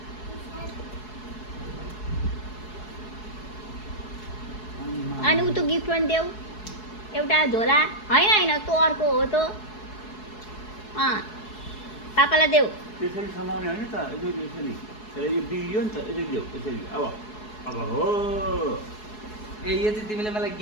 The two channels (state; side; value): late; right; 4.7 ms